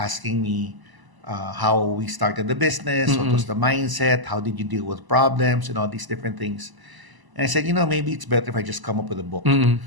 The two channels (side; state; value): left; late; 1.0 ms